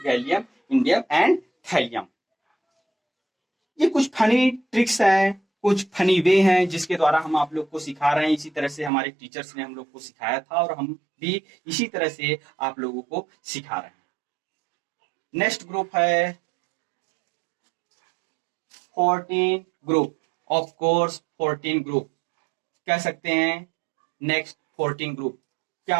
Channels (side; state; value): left; drops out; at 8.9 s